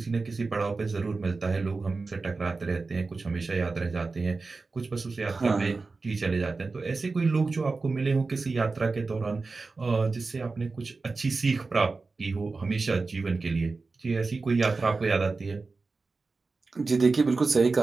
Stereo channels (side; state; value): left; quieter; 4.0 dB